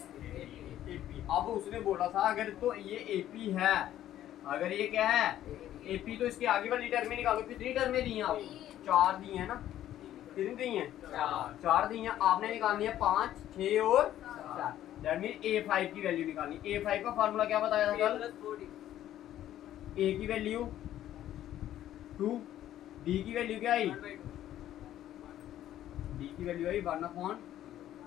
AP. अब उसने बोला था अगर तो ये एपी है, अगर ये क्या है एपी, तो इसके आगे वाली टर्में निकालो। कितनी टर्में दी हैं आपको, 4 दी हैं ना, कितनी दी हैं 4 दी हैं। आपने निकालनी है 5 6 और 4। दैट मीन a5 की वैल्यू निकालनी। a5 का फार्मूला क्या बताया था कल? a की वैल्यू 2, d की वैल्यू क्या आई? d की वैल्यू आई 1/,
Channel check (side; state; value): right; quieter; 12.3 dB